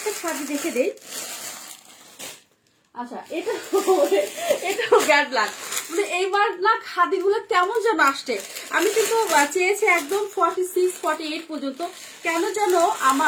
খাদি দেখে দেই। আচ্ছা এটা এটাও ব্যাড লাগ, মানে এইবার না খাদিগুলো কেমন যেন আসছে। আমি কিন্তু চেয়েছি একদম 46, 48 পর্যন্ত, কেন যেন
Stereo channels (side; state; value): both; identical; correlation 1.00